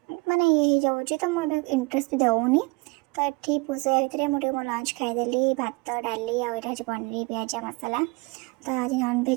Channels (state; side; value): quieter; left; 27.5 dB